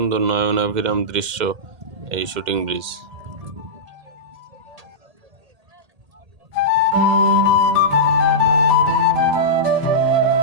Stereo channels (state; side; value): late; left; 2.1 ms